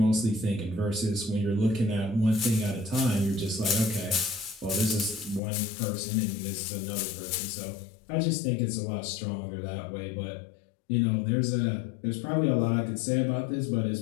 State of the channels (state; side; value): drops out; right; at 5.4 s